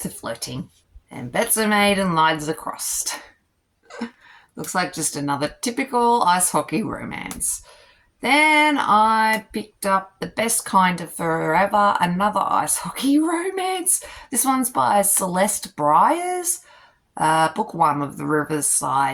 flirting. And bets are made and lines are crossed. Looks like just another typical ice hockey romance. Then I picked up The Best Kind of Forever, another ice hockey romance. This one's by Celeste Bryars. Book 1 of the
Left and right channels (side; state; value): both; identical; correlation 1.00